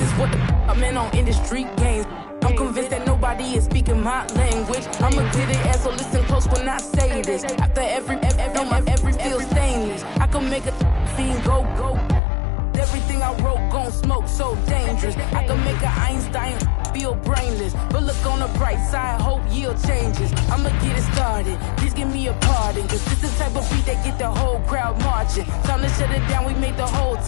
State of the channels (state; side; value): drops out; right; at 12.2 s